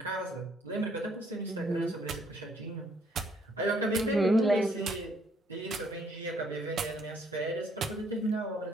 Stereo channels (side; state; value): both; normal; correlation 0.67